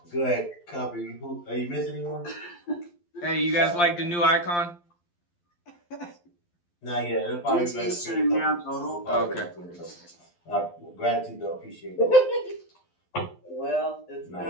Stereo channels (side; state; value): right; late; 12 ms